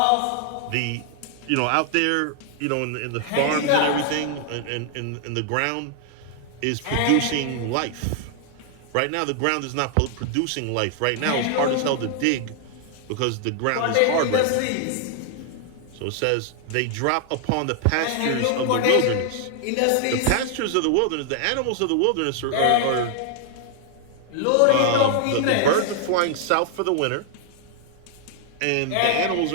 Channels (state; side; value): different; both; correlation 0.00